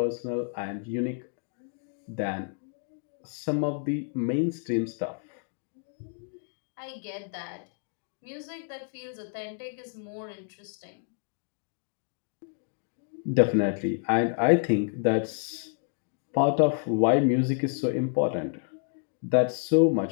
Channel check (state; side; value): silent; right; 58 dB below the other